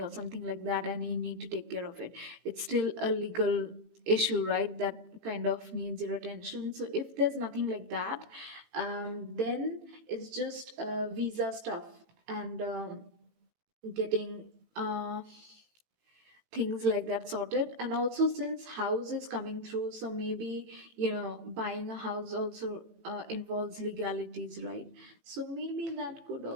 or something like that and you need to take care of it, it's still a legal issue, right? That kind of needs your attention. So if there's nothing like that, then it's just visa stuff and getting things like that sorted. And also, since house is coming through, so maybe buying a house also involves legalities, right? So maybe that could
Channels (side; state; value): left; late; 18 ms